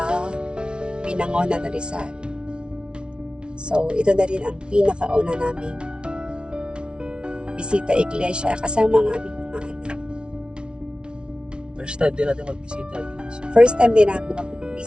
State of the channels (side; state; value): left; late; 0.056 ms